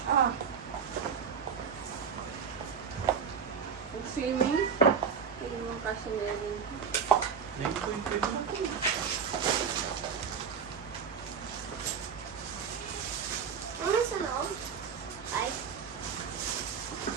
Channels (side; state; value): left; quieter; 6.5 dB